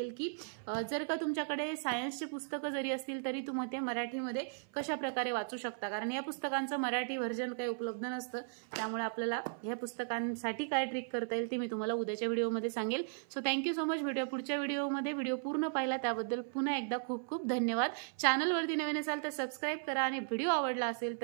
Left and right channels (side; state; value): left; silent; 54 dB below the other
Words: की जर का तुमच्याकडे सायन्सचे पुस्तकं जरी असतील तरी तुम्ही ते मराठीमध्ये कशा प्रकारे वाचू शकता, कारण या पुस्तकांचं मराठी व्हर्जन काही उपलब्ध नसतं. त्यामुळे आपल्याला ह्या पुस्तकांसाठी काय ट्रिक करता येईल ते मी तुम्हाला उद्याच्या व्हिडिओमध्ये सांगेल. सो थँक्यू सो मच. भेटूया पुढच्या व्हिडिओमध्ये. व्हिडिओ पूर्ण पाहिला त्याबद्दल पुन्हा एकदा खूप खूप धन्यवाद. चॅनलवरती नवीन असाल तर सबस्क्राईब करा, आणि व्हिडिओ आवडला असेल